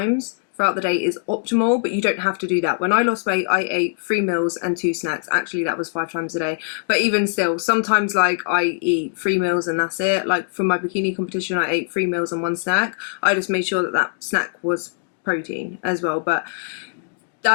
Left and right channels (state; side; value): silent; right; digital silence